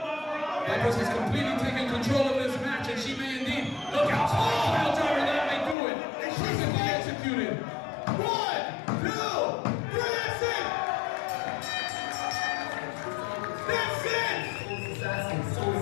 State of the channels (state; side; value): drops out; right; at 5.8 s